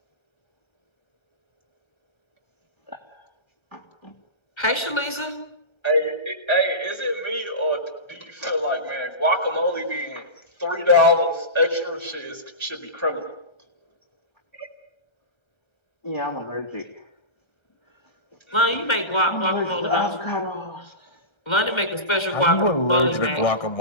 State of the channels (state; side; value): late; right; 1.3 ms